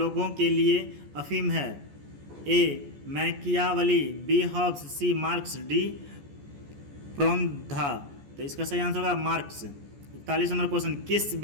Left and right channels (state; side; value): late; left; 14 ms